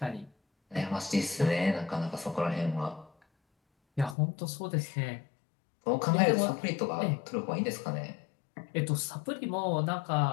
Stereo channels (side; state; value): right; drops out; at 4.2 s